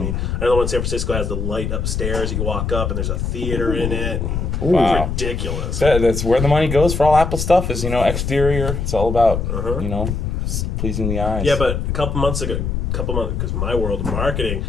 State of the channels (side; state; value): left; noise; rumble, 2 dB below the sound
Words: I know the one in San Francisco has the light upstairs. You walk up and there's a theater in it. Wow. It's ridiculous. That's where the money goes for all Apple stuff is, exterior. It's all about, pleasing the eyes. Yeah, but a couple months, because my world of marketing,